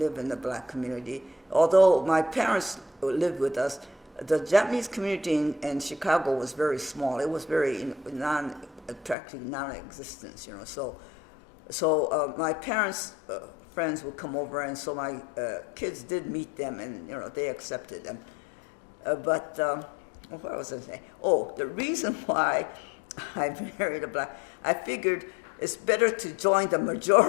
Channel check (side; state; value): right; drops out; at 9.2 s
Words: in the black community. Although my parents lived with us, the Japanese community in Chicago was very small. It was very practically non-existent, So my parents' friends would come over, and so my kids did meet them, and they accepted them. But what was I saying? Oh, the reason why I married a black, I figured it's better to join the